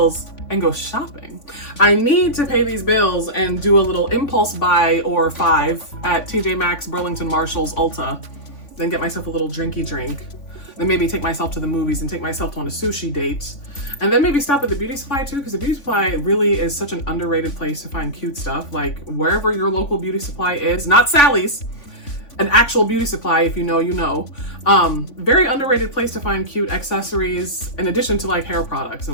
and go shopping. I need to pay these bills and do a little impulse buy or 5 at TJ Maxx, Burlington, Marshalls, Ulta. Then get myself a little drinky drink. Then maybe take myself to the movies and take myself on a sushi date. And then maybe stop at the beauty supply too, because the beauty supply really is such an underrated place to find cute stuff. Like wherever your local beauty supply is, not Sally's, an actual beauty supply, if you know, you know. Very underrated place to find cute accessories in addition to like hair products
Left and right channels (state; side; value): late; right; 3.5 ms